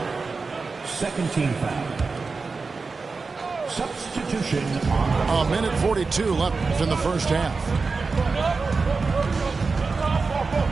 Second team foul. Substitution on A minute 42 left in the first half.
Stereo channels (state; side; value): quieter; left; 4.3 dB